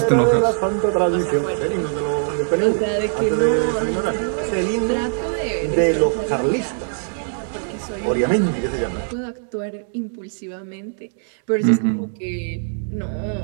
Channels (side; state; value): left; silent; 65 dB below the other